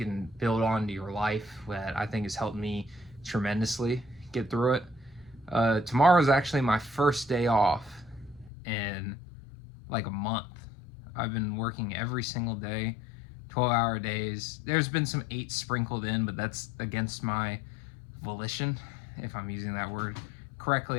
build onto your life that I think has helped me tremendously get through it. Tomorrow is actually my first day off in like a month. I've been working every single day, 12-hour days. There's been some 8 sprinkled in, but that's against my volition, if I'm using that word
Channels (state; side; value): drops out; right; at 8.5 s